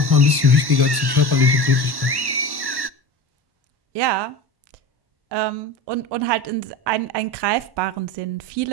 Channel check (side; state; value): left; late; 1.1 ms